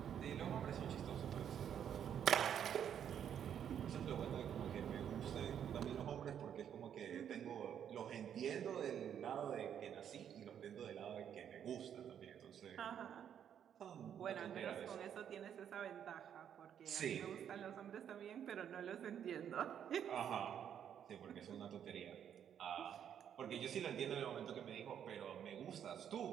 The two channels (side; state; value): left; quieter; 9.0 dB